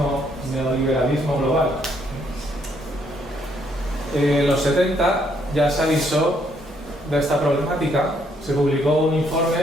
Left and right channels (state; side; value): normal; both; correlation 0.70